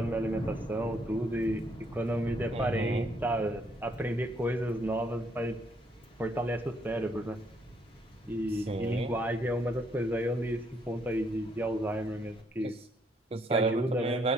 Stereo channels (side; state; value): both; normal; correlation 0.70